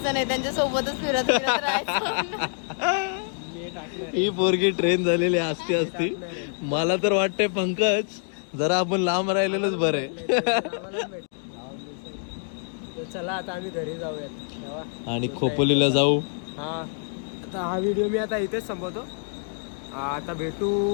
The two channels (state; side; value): silent; right; digital silence